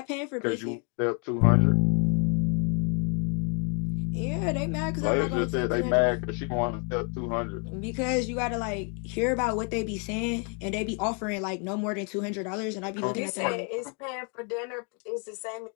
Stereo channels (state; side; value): quieter; right; 37.9 dB